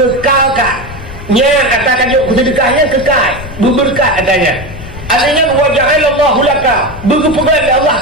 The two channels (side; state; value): left; noise; rumble, 13 dB below the sound